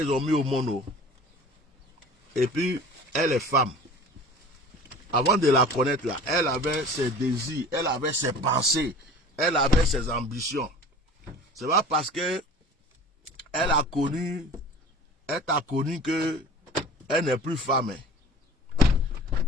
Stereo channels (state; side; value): normal; both; correlation 0.41